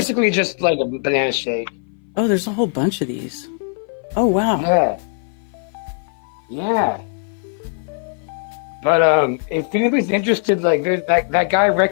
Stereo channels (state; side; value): silent; right; 59 dB below the other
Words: basically just like a banana shake. Oh, there's a whole bunch of these. Oh, wow. Yeah. But if anybody's interested, like there's that guy